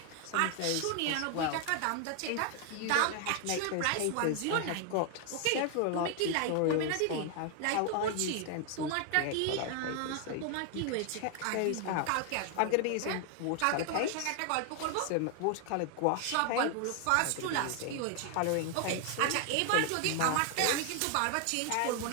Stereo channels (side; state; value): both; different; correlation 0.00